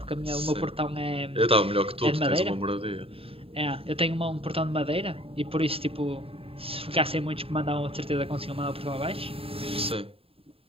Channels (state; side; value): late; left; 0.27 ms